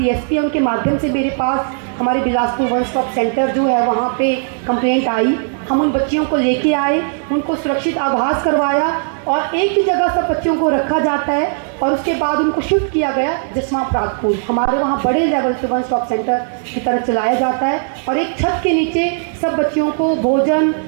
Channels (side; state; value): left; silent; 66 dB below the other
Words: है उनके माध्यम से मेरे पास हमारे बिलासपुर वन स्टॉप सेंटर जो है वहाँ पे कंप्लेंट आई। हम उन बच्चियों को लेके आए, उनको सुरक्षित आभास करवाया और एक ही जगह सब बच्चियों को रखा जाता है और उसके बाद उनको शिफ्ट किया गया जसवा प्रागपुर। हमारे वहाँ बड़े लेवल पे वन स्टॉप सेंटर की तरह चलाया जाता है और एक छत के नीचे सब बच्चियों को भोजन,